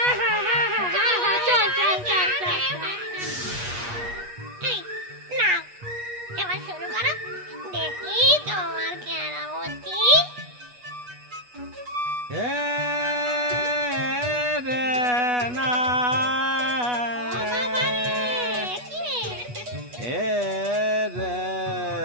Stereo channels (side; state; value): left; late; 8.2 ms